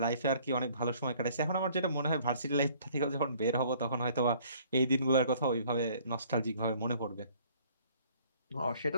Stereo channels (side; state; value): both; inverted; correlation -0.58